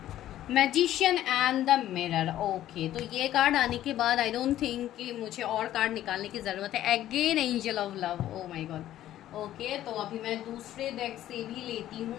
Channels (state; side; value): quieter; right; 12.9 dB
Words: Magician and the mirror, okay. तो ये कार्ड आने के बाद आई डोंट थिंक कि मुझे और कार्ड निकालने की ज़रूरत है। Again angel of love, O my God, okay. तो अभी मैं दूसरे डेक से भी लेती